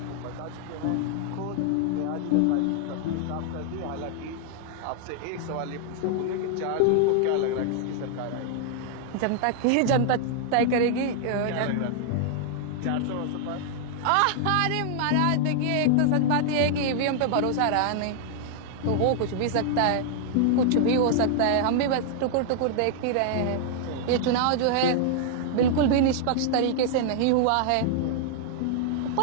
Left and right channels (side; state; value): both; different; correlation 0.00